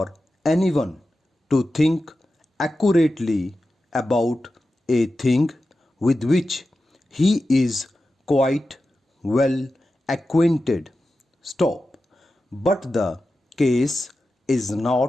anyone to think accurately about a thing with which he is quite well acquainted. Stop. But the case is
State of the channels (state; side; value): normal; both; correlation 0.92